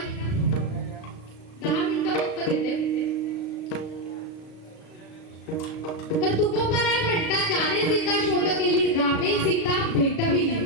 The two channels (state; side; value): late; right; 36 ms